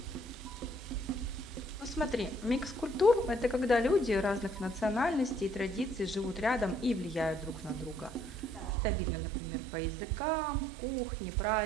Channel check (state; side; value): drops out; left; at 8.8 s